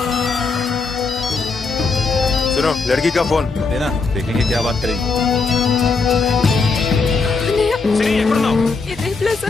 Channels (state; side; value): quieter; right; 4.3 dB